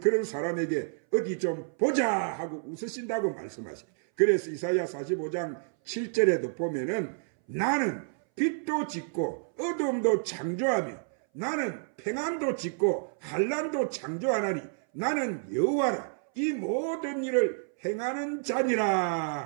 사람에게 어디 좀 보자 하고 웃으신다고 말씀하세요. 그래서 이사야 45장 7절에도 보면은 나는 빛도 짓고 어둠도 창조하며 나는 평안도 짓고 환난도 창조하나니 나는 여호와라. 이 모든 일을 행하는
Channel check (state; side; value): silent; left; 58 dB below the other